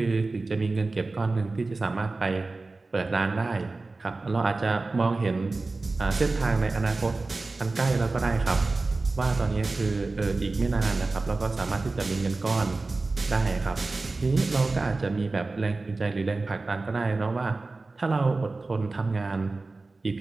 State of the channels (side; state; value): left; quieter; 3.5 dB